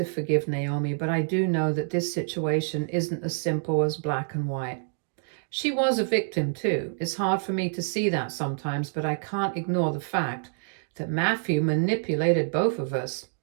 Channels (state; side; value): silent; left; digital silence